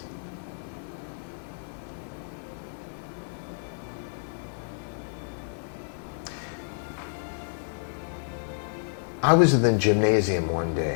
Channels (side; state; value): right; silent; 56 dB below the other